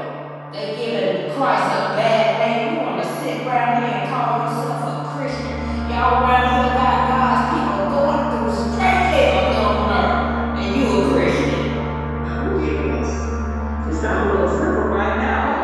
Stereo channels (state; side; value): identical; both; correlation 1.00